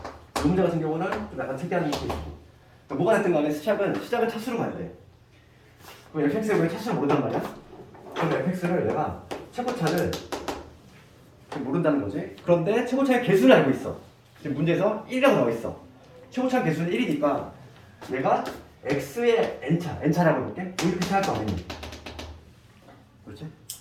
이 문제 같은 경우는 좀 약간 특이한 케이스고 그러니까 뭐가 됐든 간에 시작은 차수로 가야 돼. 그럼 fx에 왜 차수를 모른단 말이야? 그럼 fx를 내가 최고차를 모른다는 거지. 그런데 최고차의 개수를 알고 있어. 지금 문제에서 1이라고 나와 있어. 최고차 개수는 1이니까 얘가 x의 n차라고 해볼게. 이렇게 시작할 거 아니니? 그렇지?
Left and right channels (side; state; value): both; identical; correlation 1.00